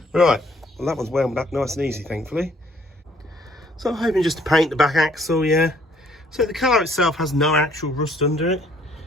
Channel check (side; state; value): both; normal; correlation 0.62